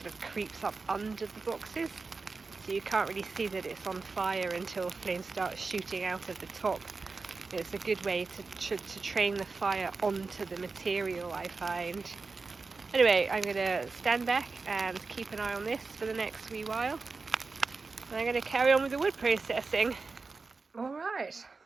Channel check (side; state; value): left; quieter; 4.2 dB